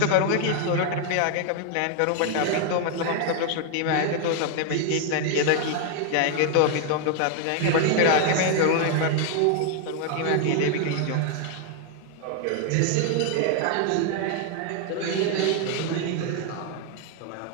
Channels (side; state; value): both; different; correlation 0.00